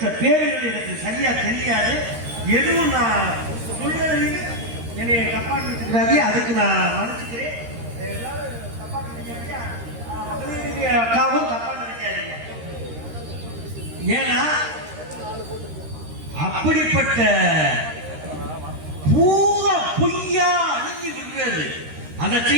பேர்கள் எனக்கு சரியா தெரியாது, எதுவும் நான் சொல்றதுக்கு என்னை தப்பா நினைச்சுக்காதீங்க, அதுக்கு நான் மன்னிச்சுக்கிறேன். அக்காவும் தப்பா நினைக்காதீங்க. ஏன்னா அப்படிப்பட்ட பூரா பொய்யா அழிஞ்சு விடுறது. அதை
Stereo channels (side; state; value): left; late; 13 ms